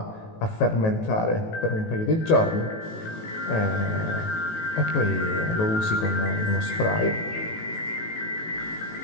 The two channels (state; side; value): late; right; 18 ms